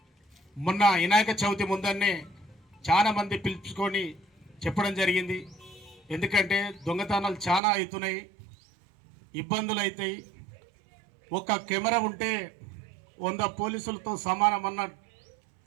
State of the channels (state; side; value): drops out; left; at 7.6 s